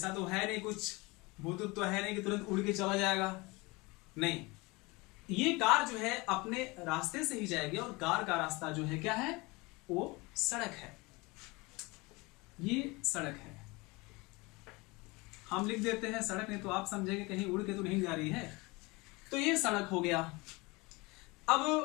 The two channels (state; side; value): quieter; right; 24.7 dB